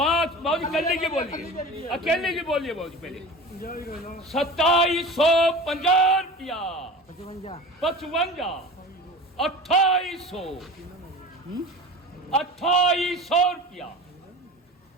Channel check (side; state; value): both; normal; correlation 0.35